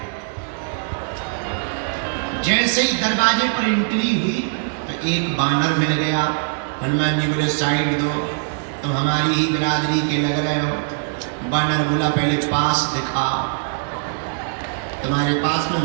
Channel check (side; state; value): left; silent; digital silence